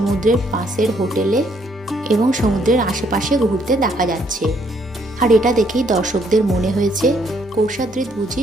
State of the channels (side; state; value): both; normal; correlation 0.69